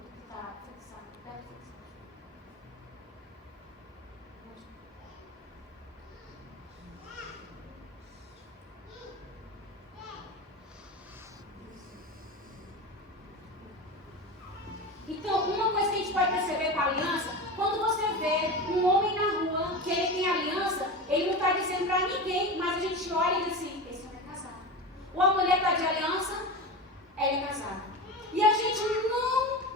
Está fixado. Deve fixar. Então, uma coisa que a gente pode perceber com a aliança, quando você vê um homem na rua que ele tem aliança, ele não está dizendo para ninguém, mas a gente olha e diz assim, esse homem é casado. Ou a mulher está de aliança, ela é casada. E a gente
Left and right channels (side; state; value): both; normal; correlation 0.26